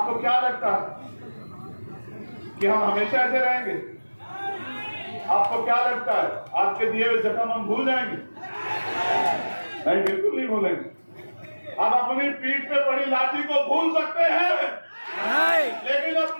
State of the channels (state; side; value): inverted; both; correlation -1.00